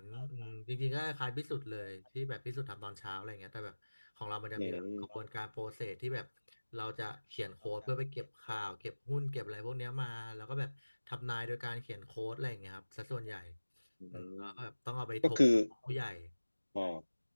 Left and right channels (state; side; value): inverted; both; correlation -1.00